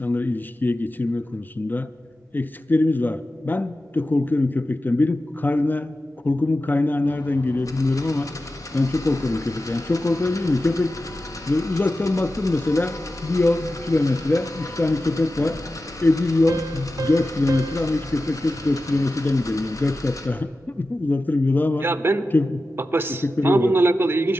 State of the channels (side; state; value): both; normal; correlation 0.93